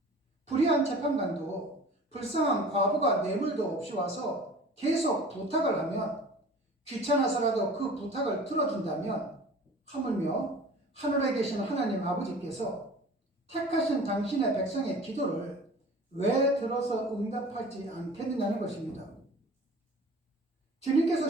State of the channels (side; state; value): both; normal; correlation 0.42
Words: 불의한 재판관도 불쌍한 과부가 뇌물도 없이 와서 계속 부탁을 하면 귀찮아서라도 그 부탁을 들어준다면 하물며 하늘에 계신 하나님 아버지께서 택하신 당신의 백성의 기도를 왜 들어서 응답하지 않겠느냐는 것입니다. 주님께서